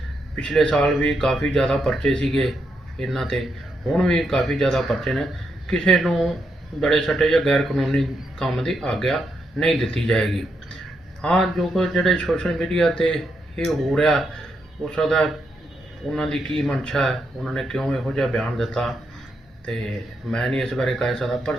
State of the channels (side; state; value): both; normal; correlation 0.81